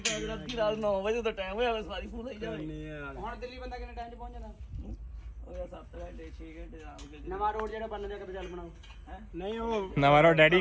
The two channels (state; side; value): identical; both; correlation 1.00